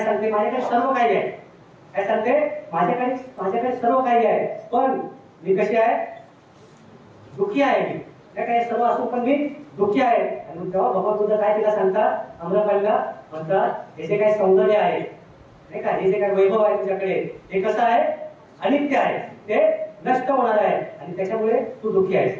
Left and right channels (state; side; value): identical; both; correlation 1.00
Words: सांगते? माझ्याकडे सर्व काही आहे. काय सांगते? माझ्याकडे सर्व काही आहे, पण मी कशी आहे? दुःखी आहे. मी काय सर्व असून पण मी दुःखी आहे. आणि तेव्हा भगवान बुद्ध काय तिला सांगतात? आम्रपालीला म्हणतात, हे जे काही सौंदर्य आहे, नाही का, हे जे काही वैभव आहे तुझ्याकडे, हे कसं आहे? अनित्य आहे, ते नष्ट होणार आहे, आणि त्याच्यामुळे तू दुःखी आहेस.